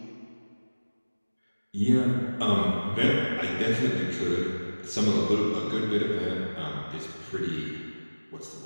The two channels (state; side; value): inverted; both; correlation -1.00